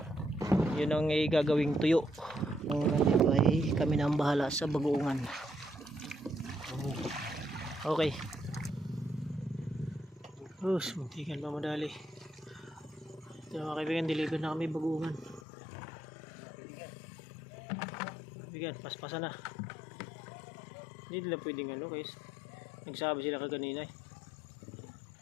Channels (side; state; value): right; drops out; at 15.4 s